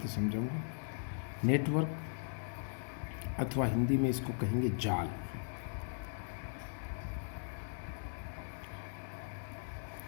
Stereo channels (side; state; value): right; silent; digital silence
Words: समझाऊंगा। नेटवर्क अथवा हिंदी में इसको कहेंगे जाल।